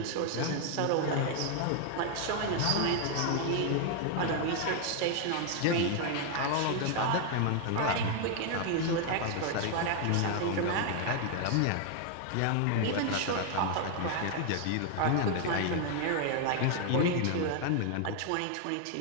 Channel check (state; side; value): different; both; correlation 0.00